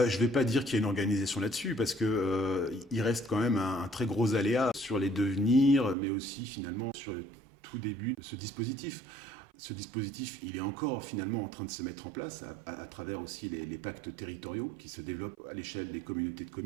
ne vais pas dire qu'il y a une organisation là-dessus, parce que il reste quand même un très gros aléa sur les devenirs, mais aussi finalement sur le tout début de ce dispositif. Ce dispositif, il est encore finalement en train de se mettre en place à travers aussi les pactes territoriaux qui se développent à l'échelle des communautés de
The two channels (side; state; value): left; drops out; at 6.0 s